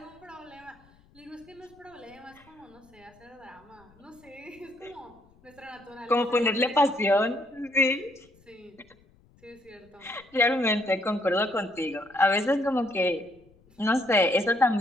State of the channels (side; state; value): left; noise; rumble, 29 dB below the sound